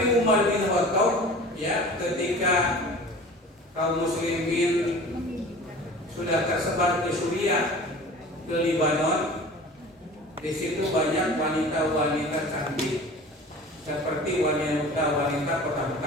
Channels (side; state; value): both; normal; correlation 0.41